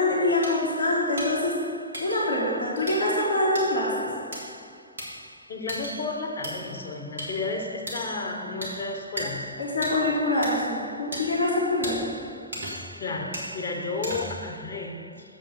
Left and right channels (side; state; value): both; inverted; correlation -0.32